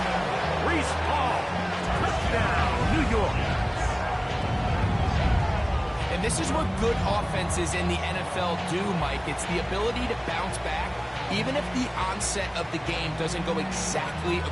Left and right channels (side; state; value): both; identical; correlation 1.00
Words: Reese Hall. Touchdown, New York. And this is what good offenses in the NFL do, Mike. It's the ability to bounce back, even if the onset of the game doesn't go exactly